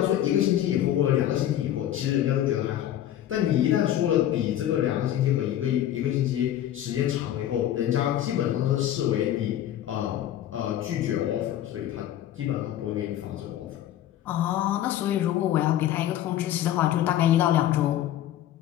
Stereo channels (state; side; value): quieter; right; 12.0 dB